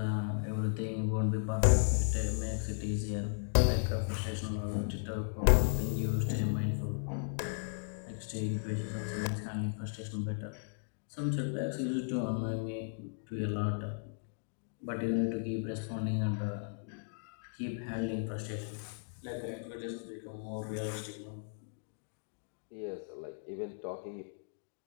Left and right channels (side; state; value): right; silent; digital silence